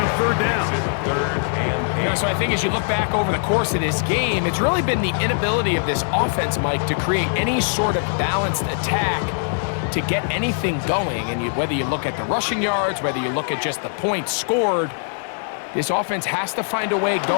3rd down. You know, so I think as you look back over the course of this game, it's really been the inability of this offense, Mike, to create any sort of balanced attack to get anything going. And whether you look at the rushing yards, whether you look at just the points scored, this offense has to find a way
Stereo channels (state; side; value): silent; right; 64 dB below the other